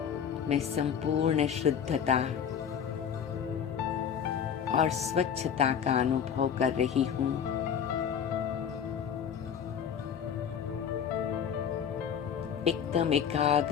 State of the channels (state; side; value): quieter; right; 8.0 dB